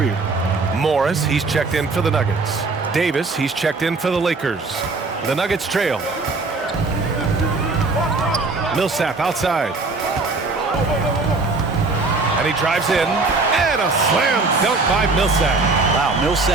Morris, he's checked in for the Nuggets. Davis, he's checked in for the Lakers. The Nuggets trail. Millsap outside. And he drives in, and a slam dunk by Millsap. Wow,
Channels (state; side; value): quieter; left; 3.7 dB